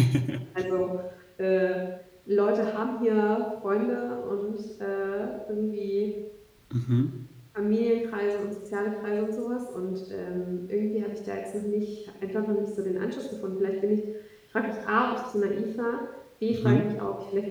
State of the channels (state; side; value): identical; both; correlation 1.00